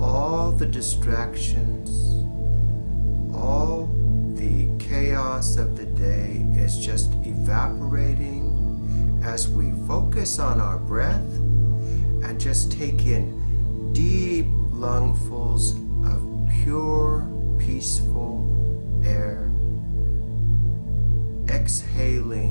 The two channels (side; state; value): both; inverted; correlation -1.00